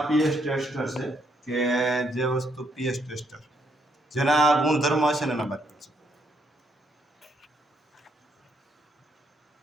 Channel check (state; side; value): normal; both; correlation 0.74